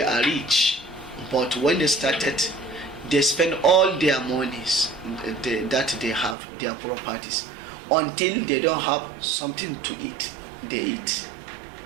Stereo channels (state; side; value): drops out; left; at 6.4 s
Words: are rich, but when they started, they spend all their monies that they have, their properties, until they don't have something to eat. They eat.